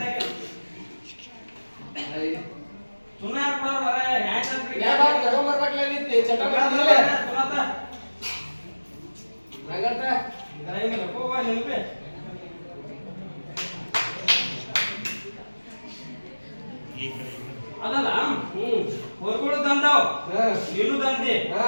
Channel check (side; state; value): both; inverted; correlation -1.00